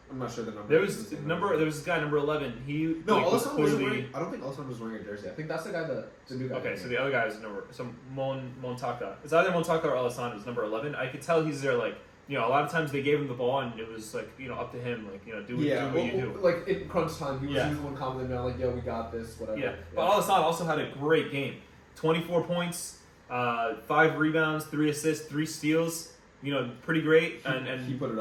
I'm not sure the number. There was this guy number 11. He Alassane wasn't wearing. I don't think Alassane was wearing a jersey. I think that's the guy the new guy. Okay, so the other guy is Montaka. It's either Montaka or Alassane is number 11. I could tell he's there like. A lot of times they gave him the ball and it was like, up to him, like, do what you do. Like in crunch time, he was the one commenting on like, yo, we got this, whatever. Yeah, but Alassane also had a great game. 24 points, 5 rebounds, 3 assists, 3 steals. Pretty great. And he put it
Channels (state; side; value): identical; both; correlation 1.00